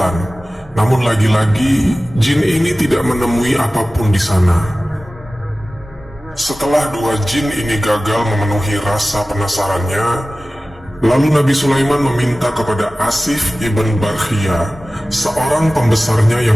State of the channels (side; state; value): both; normal; correlation 0.97